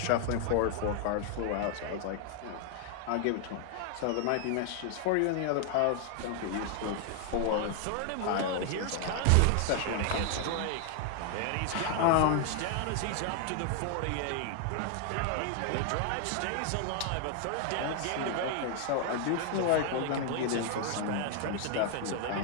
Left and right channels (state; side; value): different; both; correlation 0.00